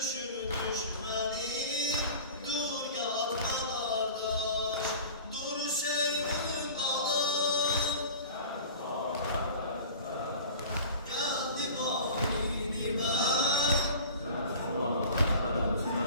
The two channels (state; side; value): inverted; both; correlation -0.40